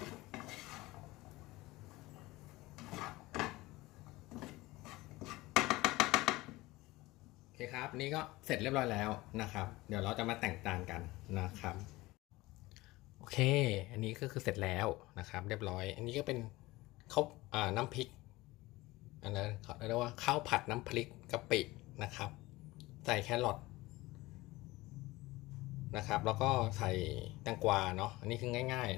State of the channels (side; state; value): right; quieter; 19.9 dB